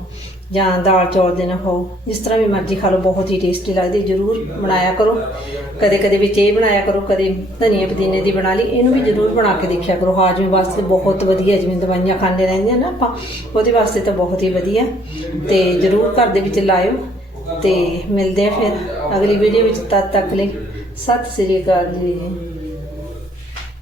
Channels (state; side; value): normal; both; correlation 0.63